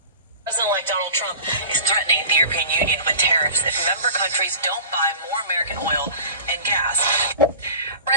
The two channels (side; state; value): both; inverted; correlation -0.39